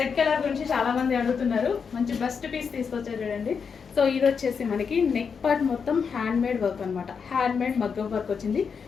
కలర్ గురించి చాలా మంది అడుగుతున్నారు. మంచి బెస్ట్ పీస్ తీసుకొచ్చారు చూడండి. సో ఇది వచ్చేసి మనకి నెక్ పార్ట్ మొత్తం హ్యాండ్ మేడ్ వర్క్ అనమాట. హ్యాండ్ మేడ్ మగ్గం వర్క్ వచ్చింది,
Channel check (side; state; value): right; quieter; 6.1 dB